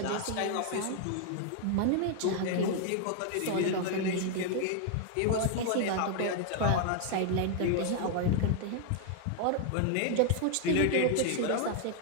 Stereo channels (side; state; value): both; different; correlation 0.00